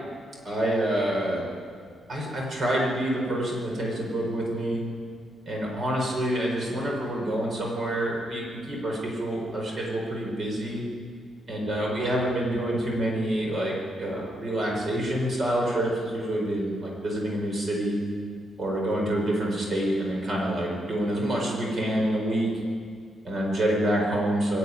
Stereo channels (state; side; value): normal; both; correlation 0.79